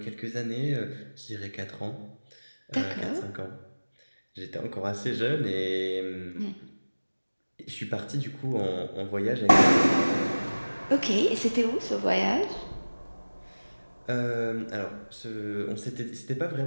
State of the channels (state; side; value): inverted; both; correlation -1.00